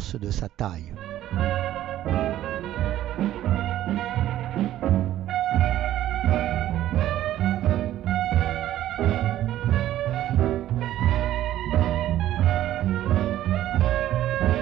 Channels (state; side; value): quieter; left; 13.2 dB